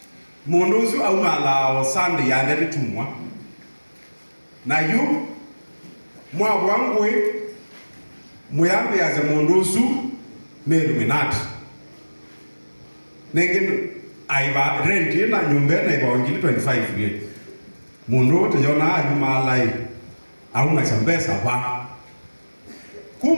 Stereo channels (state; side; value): inverted; both; correlation -1.00